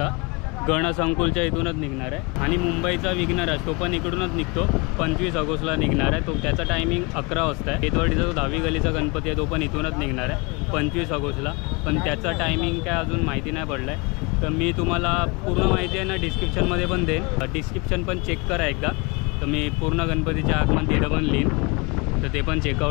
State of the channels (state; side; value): quieter; right; 28.8 dB